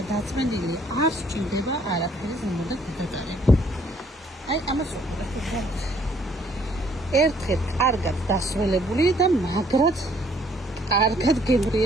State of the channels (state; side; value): normal; both; correlation 0.64